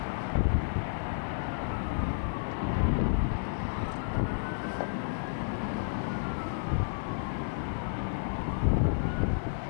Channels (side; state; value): right; silent; digital silence